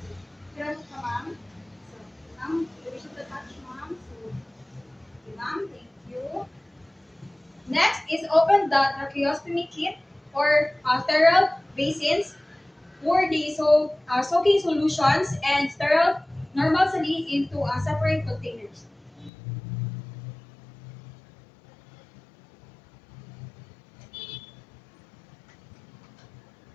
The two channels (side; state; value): right; drops out; at 19.3 s